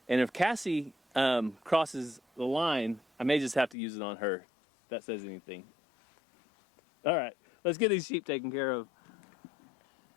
And if Cassie crosses the line, I may just have to use it on her. If that says anything. All right, let's get these sheep taken care of.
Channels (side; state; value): right; drops out; at 3.8 s